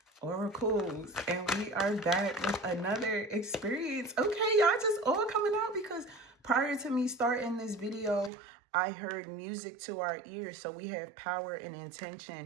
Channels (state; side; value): drops out; left; at 8.3 s